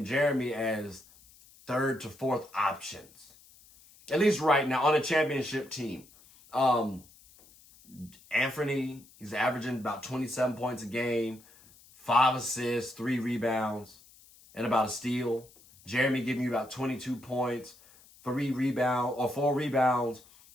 Jeremy as third to fourth options, at least right now on a championship team. Anthony, he's averaging about 27 points a game, 5 assists, 3 rebounds, and about a steal. Jeremy giving you about 22 points, 4 rebounds,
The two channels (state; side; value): noise; left; hiss, 25 dB below the sound